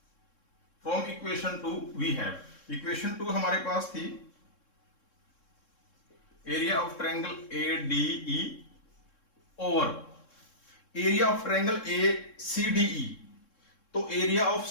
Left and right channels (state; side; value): late; right; 3.7 ms